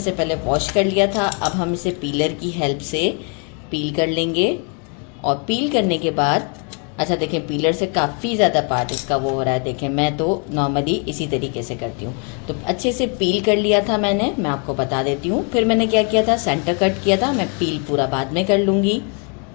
पहले वॉश कर लिया था। अब हम इसे पीलर की हेल्प से पील कर लेंगे। और पील करने के बाद अच्छा देखें, पीलर से काफ़ी ज़्यादा पार्ट इसका वो हो रहा है। देखें, मैं तो नॉर्मली इसी तरीके से करती हूँ। तो अच्छे से पील कर लिया था मैंने, मैं आपको बता देती हूँ। फिर मैंने क्या किया था, सेंटर कट किया था। मैं पील पूरा बाद में कर लूँगी।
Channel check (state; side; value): quieter; right; 38.0 dB